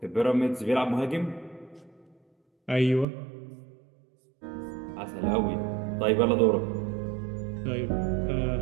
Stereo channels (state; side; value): drops out; left; at 3.1 s